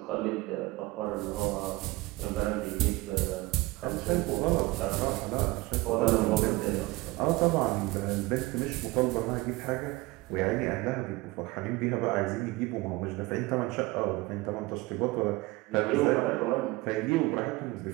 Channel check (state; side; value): quieter; left; 21.2 dB